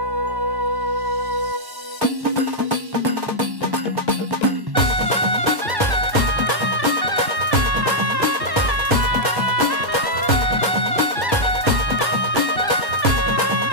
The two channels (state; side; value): late; left; 1.1 ms